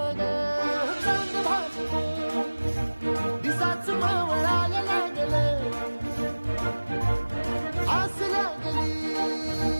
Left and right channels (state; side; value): inverted; both; correlation -1.00